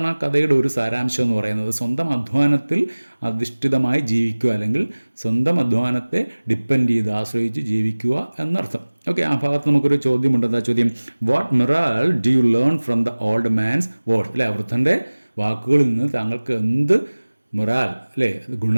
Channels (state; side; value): inverted; both; correlation -1.00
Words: ആ കഥയുടെ ഒരു സാരാംശം എന്ന് പറയുന്നത്. സ്വന്തം അധ്വാനത്തിൽ അധിഷ്ഠിതമായി ജീവിക്കുക, അല്ലെങ്കിൽ സ്വന്തം അധ്വാനത്തെ ഡിപ്പെൻഡ് ചെയ്ത് ആശ്രയിച്ച് ജീവിക്കുക എന്നർത്ഥം. ഓക്കെ, ആ ഭാഗത്ത് നമുക്കൊരു ചോദ്യമുണ്ട്. എന്താ ചോദ്യം? What morale do you learn from the old man's word. അല്ലേ, വൃദ്ധൻ്റെ വാക്കുകളിൽ നിന്ന് താങ്കൾക്ക് എന്ത് മൊറാൽ, അല്ലേ,